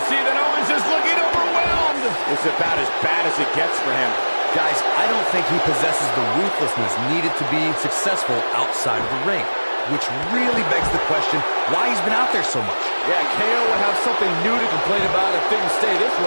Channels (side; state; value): both; inverted; correlation -1.00